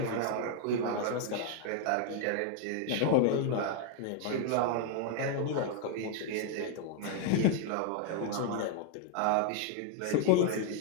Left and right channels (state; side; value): different; both; correlation 0.00